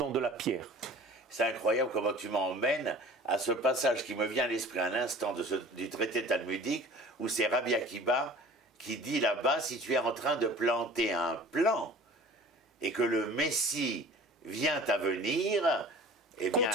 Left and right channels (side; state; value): both; normal; correlation 0.44